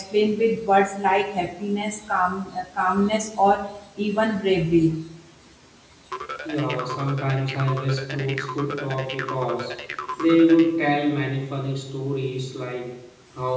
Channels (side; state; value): both; identical; correlation 1.00